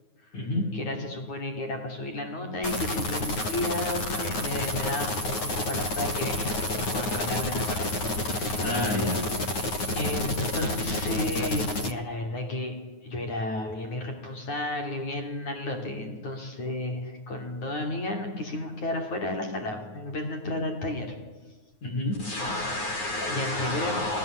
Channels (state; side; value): late; right; 9.5 ms